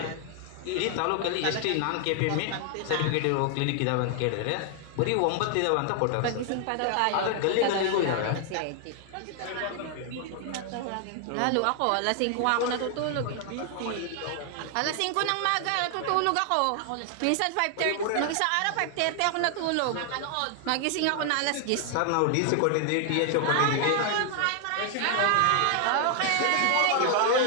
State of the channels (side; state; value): both; different; correlation 0.00